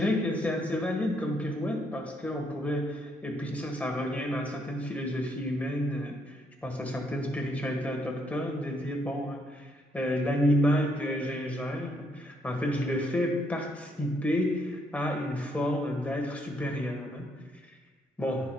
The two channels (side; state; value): both; normal; correlation 0.73